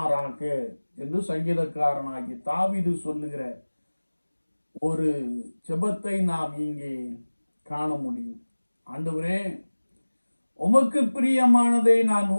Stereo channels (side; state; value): both; inverted; correlation -1.00